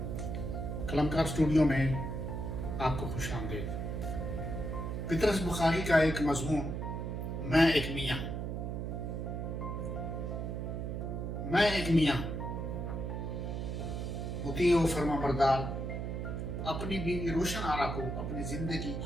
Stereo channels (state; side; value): noise; right; hum, 3 dB below the sound